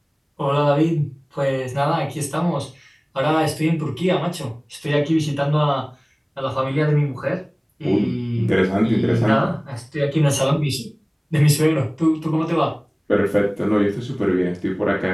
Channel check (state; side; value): identical; both; correlation 1.00